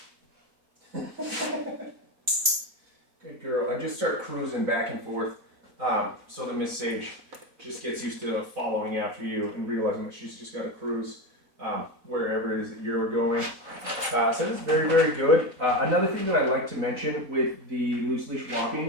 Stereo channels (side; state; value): left; late; 4.0 ms